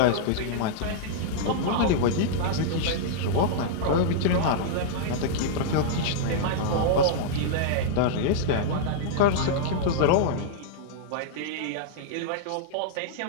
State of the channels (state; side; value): different; both; correlation -0.02